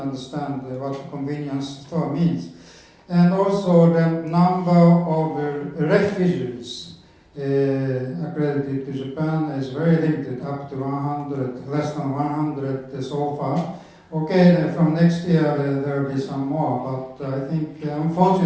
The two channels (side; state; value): both; identical; correlation 1.00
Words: what the convenience store means. And also the number of refugees accredited to Japan is very limited, up to 100, less than 100 so far. Okay, from next year there will be some more, but I think